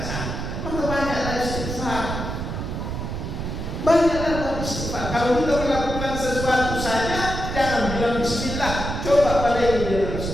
Maka banyaklah istighfar. Banyaklah istighfar. Kalau kita melakukan sesuatu saja, jangan bilang bismillah, coba pada ini dengan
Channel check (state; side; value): noise; right; rumble, 5 dB below the sound